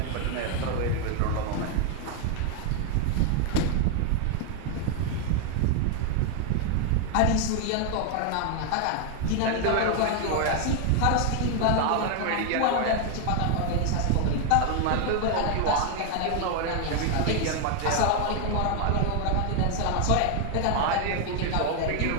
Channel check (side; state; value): both; different; correlation 0.00